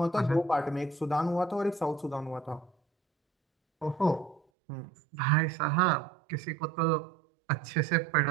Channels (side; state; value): left; drops out; at 4.4 s